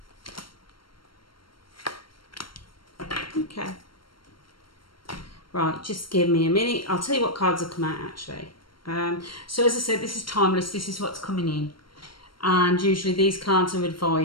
Okay. Right, just give me a minute. I'll tell you what cards have come out actually. So as I said, this is timeless. This is what's coming in. And usually these cards are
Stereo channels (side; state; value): right; late; 0.73 ms